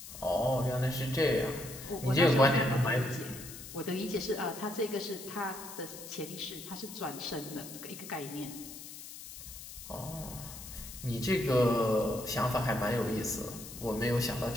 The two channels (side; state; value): left; noise; hiss, 13 dB below the sound